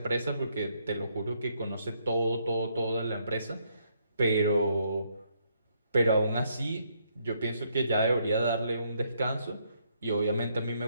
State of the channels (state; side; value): inverted; both; correlation -0.73